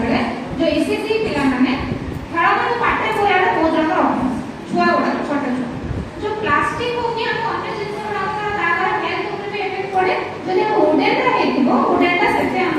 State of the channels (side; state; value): both; identical; correlation 1.00